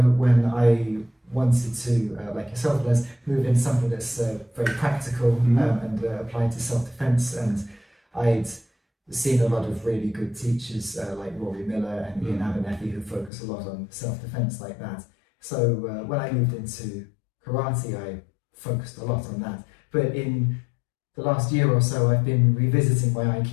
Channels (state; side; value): drops out; right; at 13.3 s